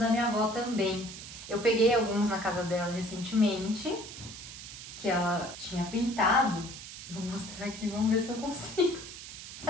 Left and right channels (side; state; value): right; noise; hiss, 12 dB below the sound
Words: minha avó também. Eu peguei alguns na casa dela recentemente, que ela tinha pintado. Vou mostrar aqui, vamos ver se eu consigo.